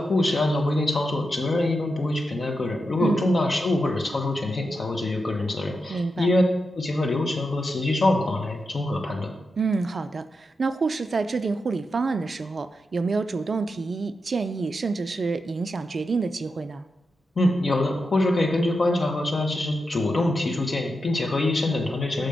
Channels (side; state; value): both; normal; correlation 0.87